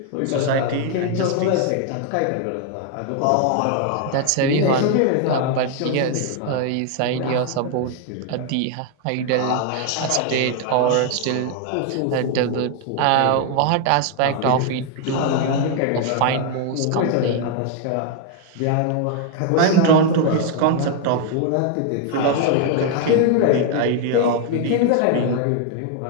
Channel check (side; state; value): both; different; correlation 0.00